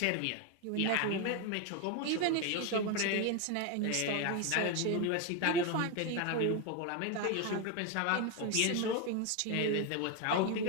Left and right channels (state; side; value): different; both; correlation 0.02